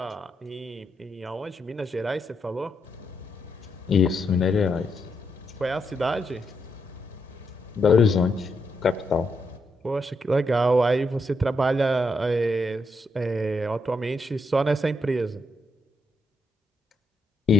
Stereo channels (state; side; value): normal; both; correlation 0.80